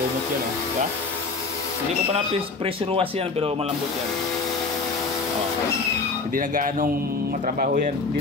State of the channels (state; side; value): quieter; right; 4.0 dB